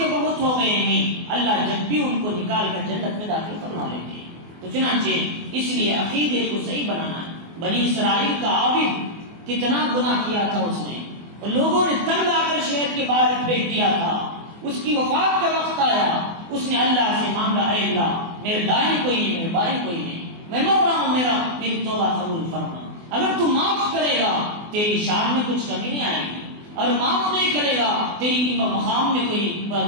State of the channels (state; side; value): late; left; 24 ms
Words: بہت ہو گئے ہیں، اللہ جب بھی ان کو نکال کر جنت میں داخل فرما لیں گے. تو چنانچہ اس لیے عقیدے کو صحیح بنانا ہے. بنی اسرائیل کا عابد کتنا گناہ کیا تھا اس نے، اور لوگوں نے تنگ آ کر شہر کے باہر پھینک دیا تھا. اس کی وفات کا وقت آیا، اس نے اللہ سے مانگا اے اللہ میرے دائیں کوئی نہیں، میرے بائیں کوئی نہیں، میں مر رہا ہوں، میری توبہ قبول فرما. اگر تو معاف کرے گا تیری شان میں کچھ کمی نہیں آئے گی، اور معاف نہیں کرے گا تیری مقام میں کوئی